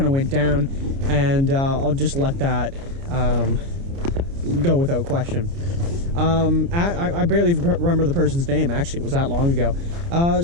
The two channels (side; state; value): left; late; 29 ms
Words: of went down, and I'll just let that go without question. I barely remember the person's name, actually. It was that long ago.